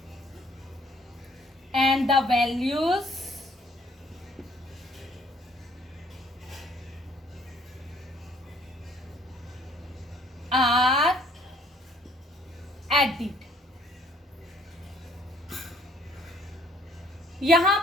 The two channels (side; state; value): both; normal; correlation 0.62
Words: and the values are added। यहां